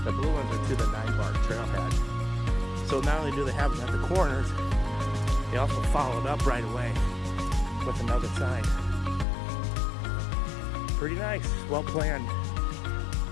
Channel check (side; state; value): right; drops out; at 9.2 s